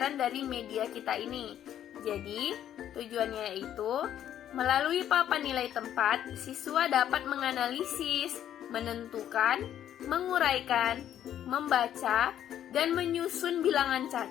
dari media kita ini. Jadi, tujuannya yaitu, melalui papan nilai tempat, siswa dapat menganalisis, menentukan, menguraikan, membaca, dan menyusun bilangan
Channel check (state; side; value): quieter; right; 10.7 dB